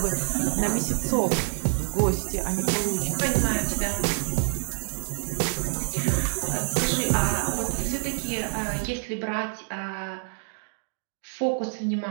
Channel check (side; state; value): left; silent; 59 dB below the other